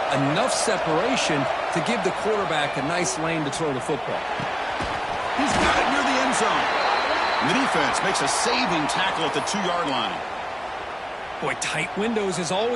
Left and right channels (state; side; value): identical; both; correlation 1.00